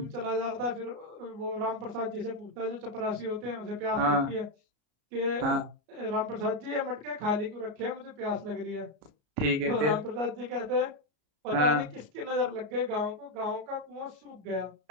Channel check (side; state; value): left; late; 33 ms